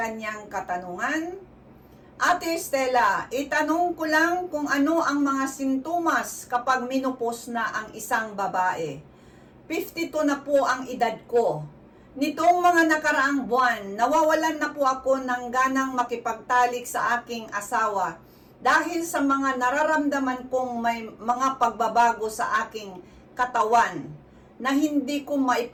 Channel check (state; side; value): identical; both; correlation 1.00